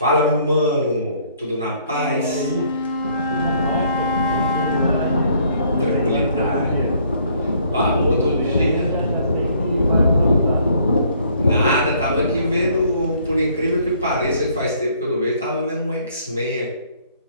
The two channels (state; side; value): inverted; both; correlation -0.63